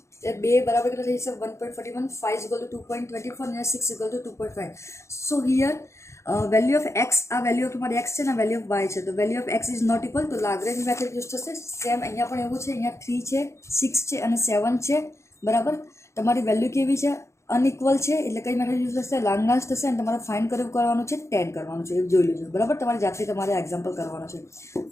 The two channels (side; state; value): right; late; 0.14 ms